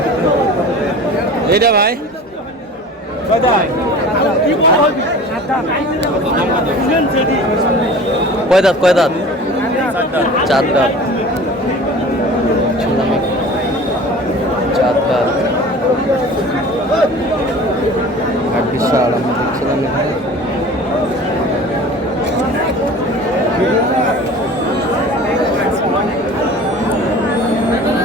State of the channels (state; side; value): normal; both; correlation 0.40